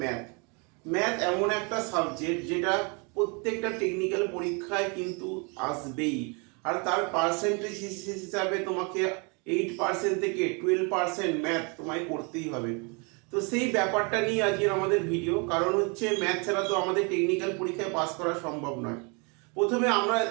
ম্যাথ। ম্যাথ এমন একটা সাবজেক্ট যেটা প্রত্যেকটা টেকনিক্যাল পরীক্ষায় কিন্তু আসবেই, আর তার পার্সেন্টেজ হিসাবে তোমাকে 8% থেকে 12% ম্যাথ তোমায় করতেই হবে। তো সেই ব্যাপারটা নিয়ে আজকের আমাদের ভিডিও, কারণ হচ্ছে ম্যাথ ছাড়া তো আমাদের টেকনিক্যাল পরীক্ষায় পাস করা সম্ভব নয়। প্রথমে আমরা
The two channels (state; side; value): quieter; left; 32.8 dB